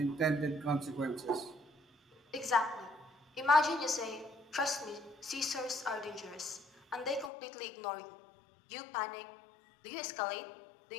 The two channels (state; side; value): drops out; right; at 7.3 s